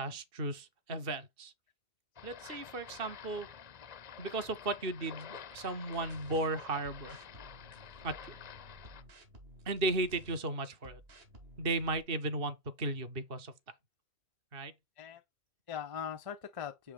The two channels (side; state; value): left; late; 2.6 ms